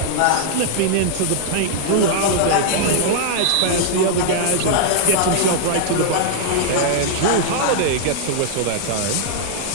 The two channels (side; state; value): both; different; correlation -0.01